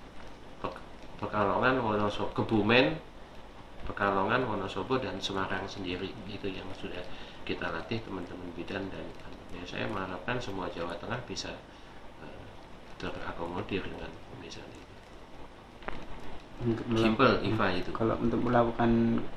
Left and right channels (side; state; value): both; identical; correlation 1.00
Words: Kebumen, Pekalongan, Wonosobo, dan Semarang sendiri. Itu yang sudah kita latih teman-teman bidan, dan ya, saya mengharapkan semua Jawa Tengah bisa terakomodir dengan pemeriksaan ini. Simple IVA itu. Kalau untuk melakukan